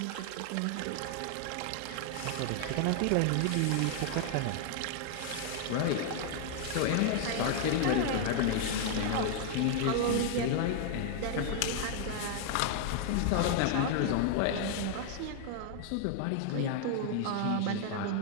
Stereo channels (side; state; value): both; different; correlation 0.00